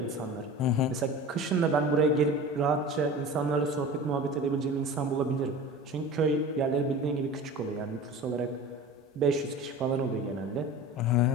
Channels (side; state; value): both; normal; correlation 0.35